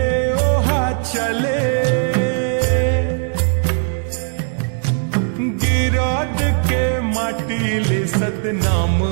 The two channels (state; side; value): silent; left; digital silence